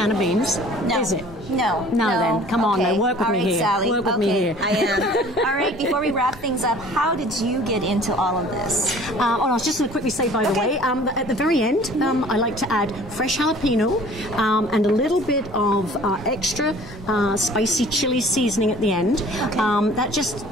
of beans, is it? No. No, then. Come on, now. Work with all me right, here. Sally. Work with me here. I am. All right, before we wrap things up, how did you get into all of this? I was just going to quickly say, by the way, at the very end, I like to add fresh jalapeno and a little bit of extra spicy chili seasoning at the end. Okay. That just,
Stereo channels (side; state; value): both; normal; correlation 0.50